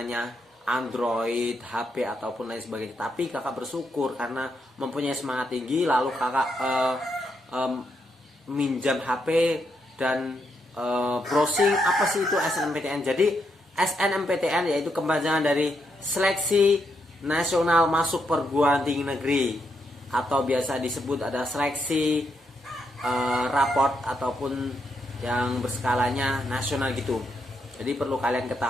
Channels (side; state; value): both; normal; correlation 0.80